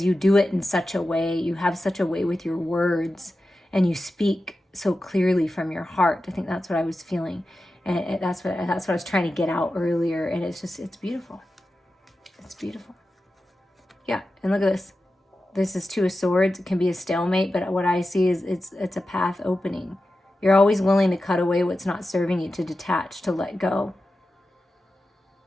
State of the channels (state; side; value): normal; both; correlation 0.92